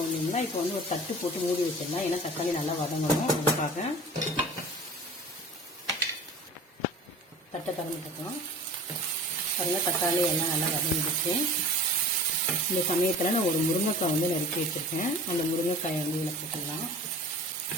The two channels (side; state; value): both; normal; correlation 0.39